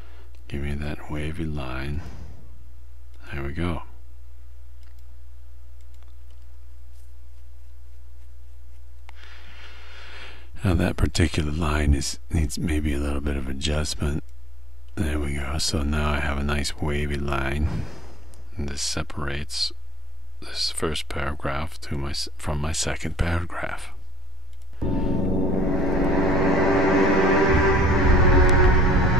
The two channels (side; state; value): both; normal; correlation 0.58